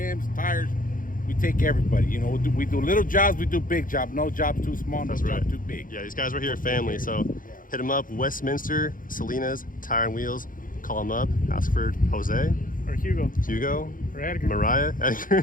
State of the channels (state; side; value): late; right; 0.40 ms